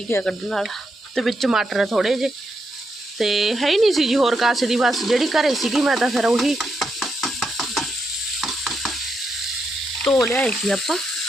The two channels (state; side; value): normal; both; correlation 0.82